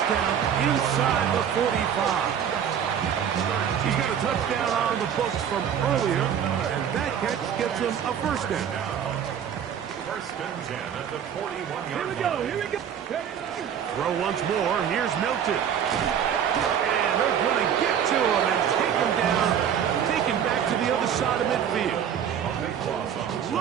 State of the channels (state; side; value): quieter; left; 8.6 dB